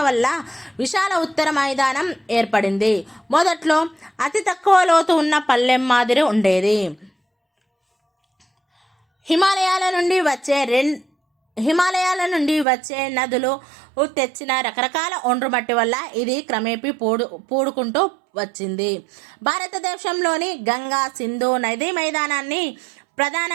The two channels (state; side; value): drops out; left; at 12.7 s